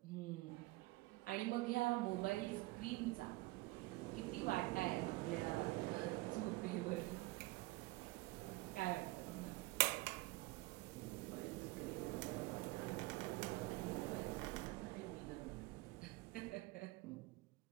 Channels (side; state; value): left; quieter; 21.3 dB